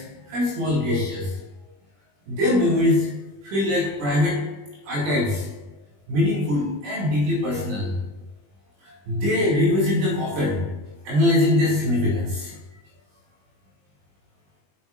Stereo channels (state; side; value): late; left; 21 ms